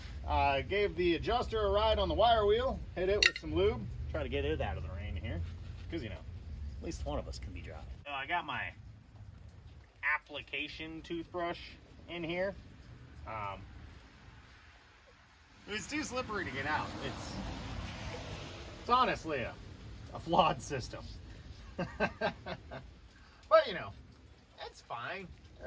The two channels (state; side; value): identical; both; correlation 1.00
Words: Gave the adjuster a ride on the wire wheel, hit it with some lube, try to get it out of the rain here, because, you know, at least one of us can be dry. So I got my application toothbrush in here. It was too slippery to get out. It's honestly a flawed system. But, you know, it's fine.